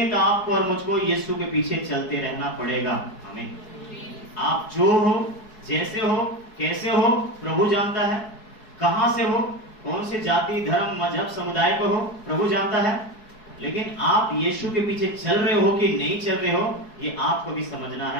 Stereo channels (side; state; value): right; late; 4.7 ms